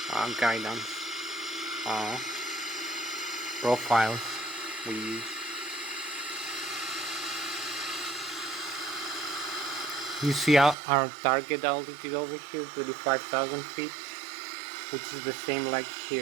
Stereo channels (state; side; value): drops out; left; at 10.8 s